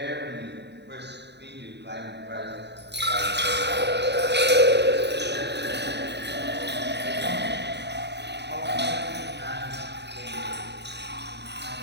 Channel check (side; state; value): left; late; 0.50 ms